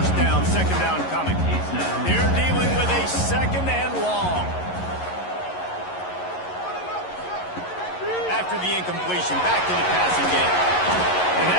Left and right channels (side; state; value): right; late; 11 ms